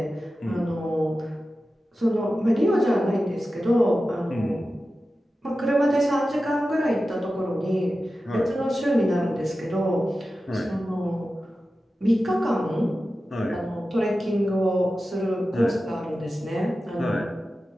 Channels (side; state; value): both; normal; correlation 0.93